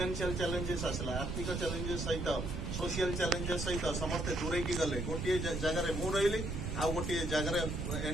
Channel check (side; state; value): right; noise; rumble, 3 dB below the sound